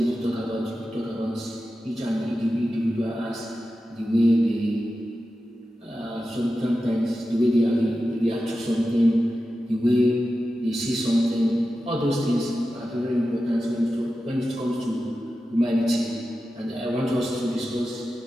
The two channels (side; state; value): both; normal; correlation 0.92